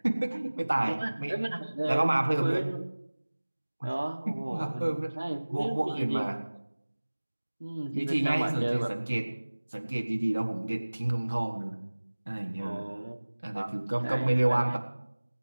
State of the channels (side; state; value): both; inverted; correlation -1.00